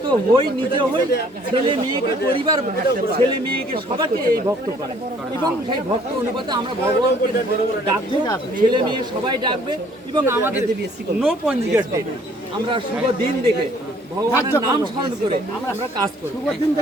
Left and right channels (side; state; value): both; normal; correlation 0.59